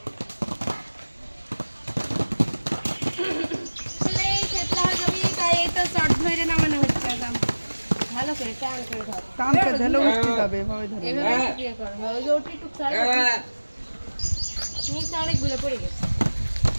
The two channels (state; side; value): inverted; both; correlation -1.00